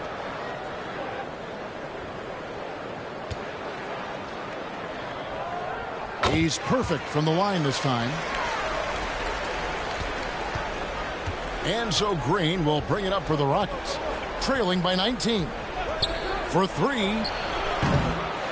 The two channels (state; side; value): identical; both; correlation 1.00